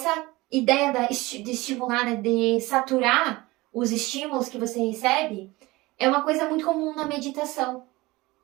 ideia de estimular, né, de saturar os estímulos que você recebe, é uma coisa muito comum na meditação.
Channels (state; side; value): quieter; left; 21.0 dB